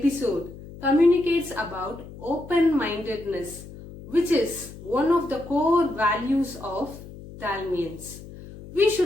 communicates about open-mindedness, which is one of the core values of Dalmians. We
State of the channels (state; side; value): noise; left; hum, 16 dB below the sound